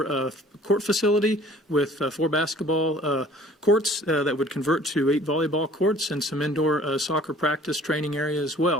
court facility with 4 basketball courts that would convert to 8 volleyball courts and some indoor soccer practice training area as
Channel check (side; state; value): both; normal; correlation 0.52